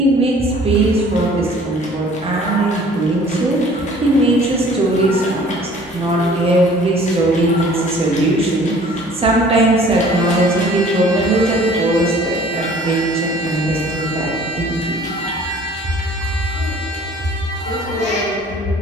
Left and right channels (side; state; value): both; normal; correlation 0.51